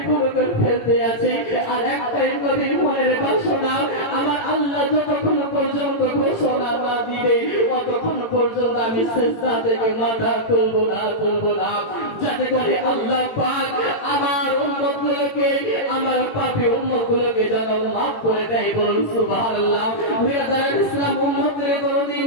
ফেলতে আছে, আর একটাই নবীর মনের বাসনা, আমার আল্লাহ যতক্ষণ পর্যন্ত ঘোষণা না দিবে ততক্ষণ পর্যন্ত আমি সিজদা থেকে মাথা তুলবো না, যাতে করে আল্লাহ পাক আমার উম্মতগুলোকে, আমার পাপী উম্মতগুলোকে যেন মাফ করে দেয়। বলুন সুবহানাল্লাহ। বিরাদার ইসলাম উম্মতের দরদি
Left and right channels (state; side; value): late; right; 18 ms